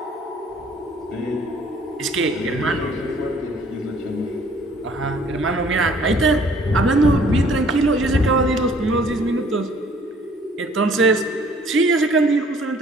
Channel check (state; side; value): normal; both; correlation 0.57